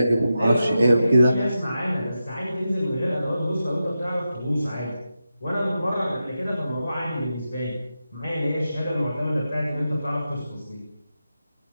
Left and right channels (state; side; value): inverted; both; correlation -0.90